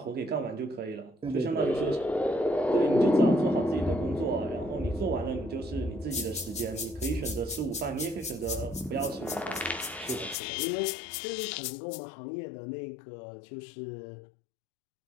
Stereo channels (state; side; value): drops out; right; at 10.4 s